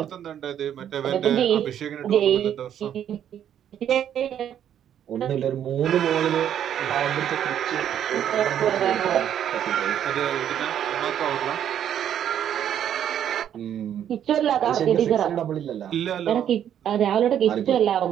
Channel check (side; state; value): left; quieter; 9.9 dB